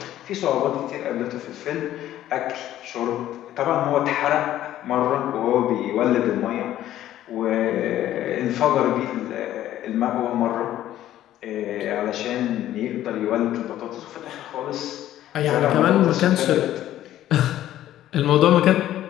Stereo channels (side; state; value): right; quieter; 12.9 dB